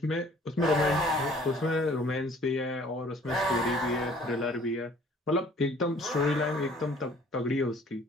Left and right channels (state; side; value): normal; both; correlation 0.55